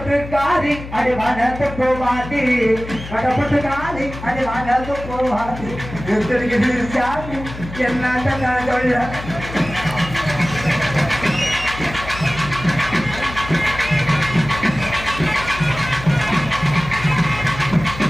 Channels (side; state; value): left; noise; hum, 12 dB below the sound